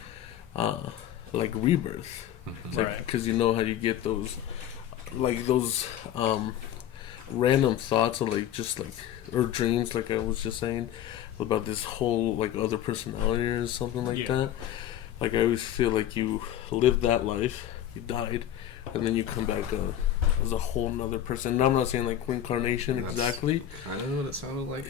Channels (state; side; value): quieter; right; 11.1 dB